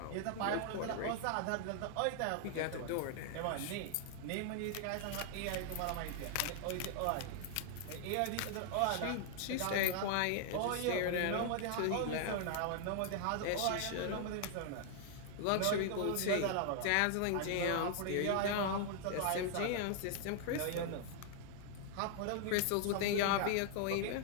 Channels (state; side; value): different; both; correlation 0.00